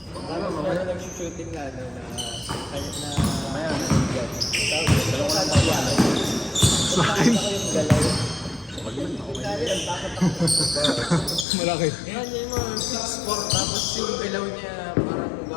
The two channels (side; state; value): right; drops out; at 11.5 s